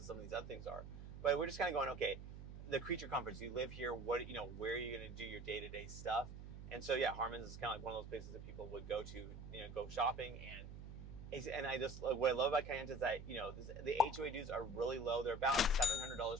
some of these other things are. But we're just kind of going, okay, the Creature Comforts, you live here, what, where are you going to do your day-to-day stuff? And so, yeah, Harmons is kind of like one of those places that people would go to, go shopping, and And I just, what I love about Kayenta is that, you know, the HOA dues are really low. They're about $700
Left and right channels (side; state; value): right; noise; hum, 11 dB below the sound